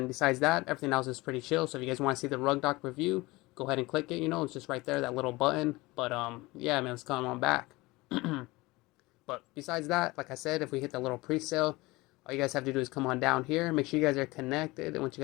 besides that, everything else is pretty chill. So if you guys want to see the rug doc review, go ahead and click it. It's just right there, that little button. But yeah, man, let's come on back. But besides that, like I said, if we hit the little pre-sale, all you guys have to do is come on down here. Make sure you guys are connected. And once you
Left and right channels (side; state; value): right; quieter; 21.6 dB